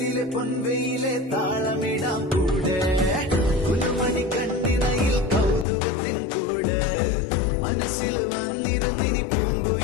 പൊൻവെയിലെ താളമിടാം കൂടെ കുലുമണി കണ്ണിനയിൽ കൗതുകത്തിൻ കൂട് മനസ്സിൽ വന്നിരുന്നിനി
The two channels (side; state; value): right; drops out; at 5.7 s